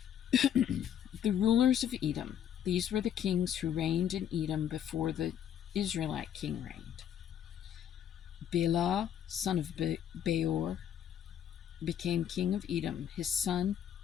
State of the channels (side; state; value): right; quieter; 9.7 dB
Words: The rulers of Edom. These were the kings who reigned in Edom before the Israelite king reigned. Bela, son of Beor, became king of Edom. His